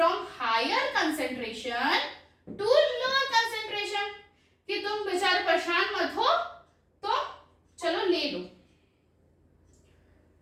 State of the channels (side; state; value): both; identical; correlation 1.00